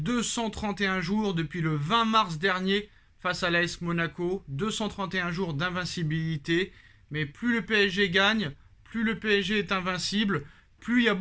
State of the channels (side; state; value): both; identical; correlation 1.00